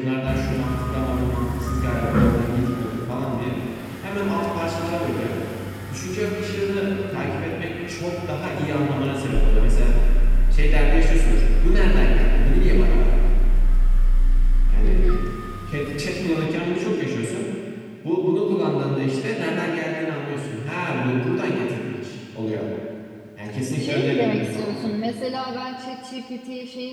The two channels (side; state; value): both; identical; correlation 1.00